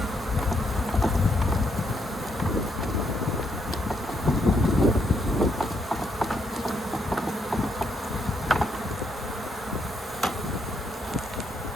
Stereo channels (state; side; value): normal; both; correlation 0.75